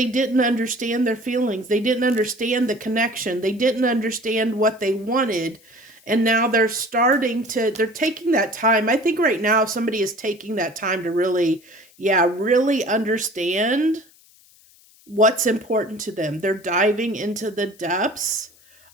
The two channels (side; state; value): left; noise; hiss, 28 dB below the sound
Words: didn't understand their feelings. They didn't understand the connection. They didn't understand what they wanted. And now they're taking that time. I think right now somebody is taking that time to really understand what's important to them. They're diving into the depths